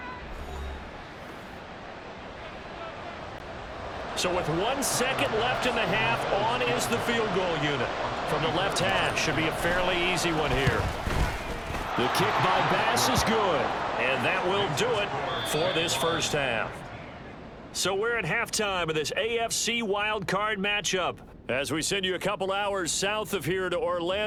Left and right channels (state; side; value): identical; both; correlation 1.00